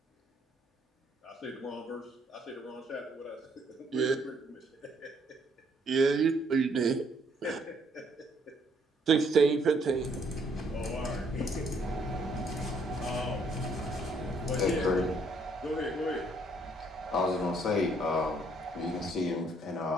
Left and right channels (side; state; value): both; normal; correlation 0.67